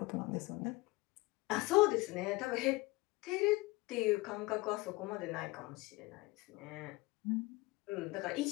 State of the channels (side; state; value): right; quieter; 22.3 dB